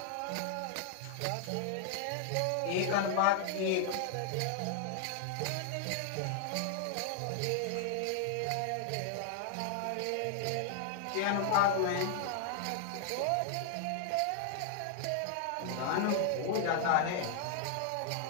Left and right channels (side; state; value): both; different; correlation 0.00